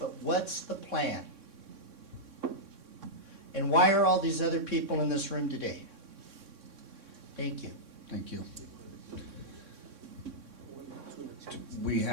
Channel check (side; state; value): left; late; 3.6 ms